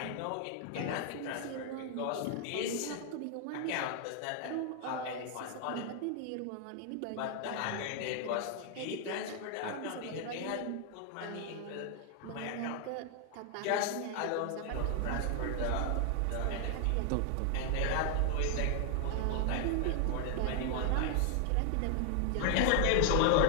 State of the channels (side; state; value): both; different; correlation 0.00